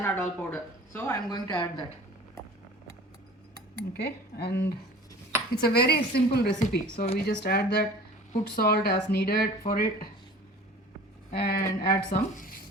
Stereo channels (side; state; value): both; normal; correlation 0.43